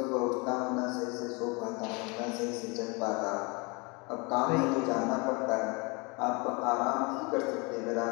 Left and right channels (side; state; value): right; quieter; 28.8 dB